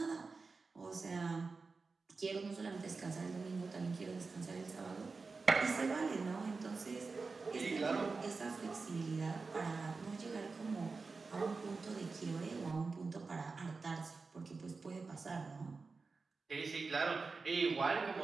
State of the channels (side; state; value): left; quieter; 4.2 dB